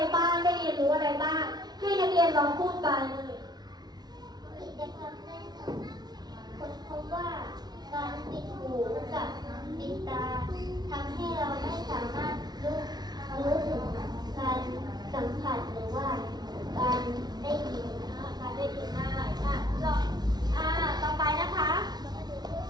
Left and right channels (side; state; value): left; late; 0.19 ms